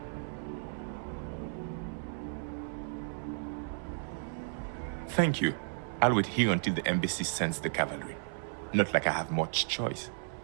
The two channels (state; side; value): silent; left; 55 dB below the other